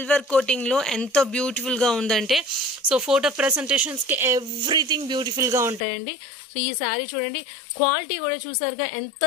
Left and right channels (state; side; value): drops out; right; at 5.8 s